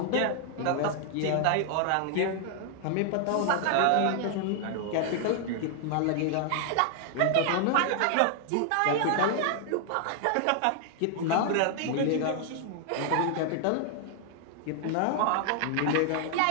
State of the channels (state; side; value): different; both; correlation 0.00